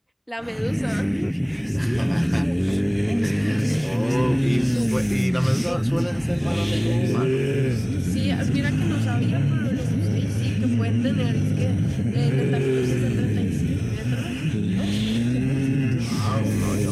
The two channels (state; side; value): identical; both; correlation 1.00